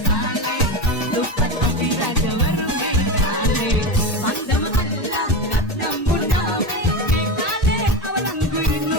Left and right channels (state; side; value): normal; both; correlation 0.20